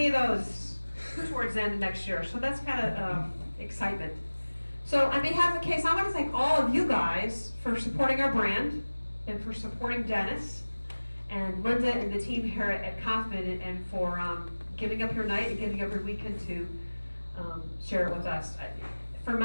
of those towards the end of next year. So that's kind of excitement. So on behalf of Case, I want to thank all of you guys for supporting our brand and for supporting Dennis and Linda and the team here at Kaufman, and for giving up your night and giving up your weekend to share it with us. For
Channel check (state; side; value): inverted; both; correlation -1.00